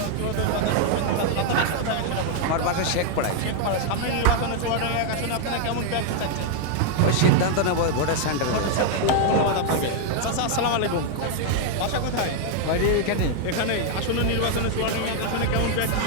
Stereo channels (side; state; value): both; different; correlation 0.00